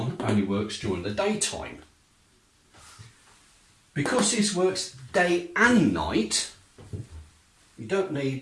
only works during the daytime. Because this works day and night, you don't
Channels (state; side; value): identical; both; correlation 1.00